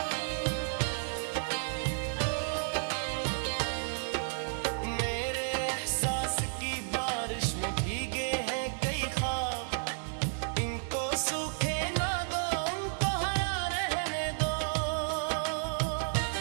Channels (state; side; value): silent; left; digital silence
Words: मेरे एहसास की बारिश में भीगे हैं कई ख्वाब, इनको सूखे ना दो, उनको हरा रहने दो।